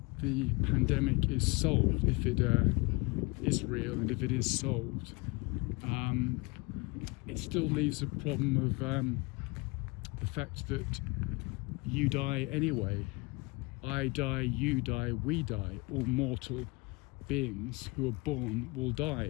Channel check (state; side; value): quieter; right; 26.6 dB